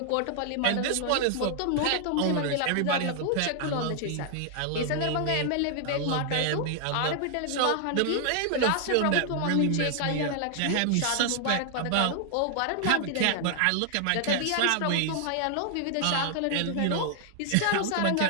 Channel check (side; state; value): both; different; correlation 0.00